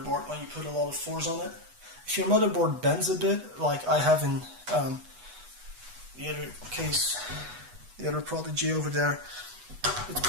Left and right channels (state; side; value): late; left; 8.2 ms